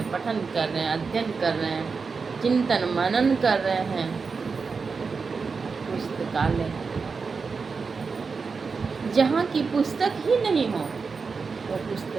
पठन कर रहे हैं, अध्ययन कर रहे हैं, चिंतन मनन कर रहे हैं। पुस्तकालय, जहाँ की पुस्तक ही नहीं हो वो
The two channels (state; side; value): quieter; left; 4.9 dB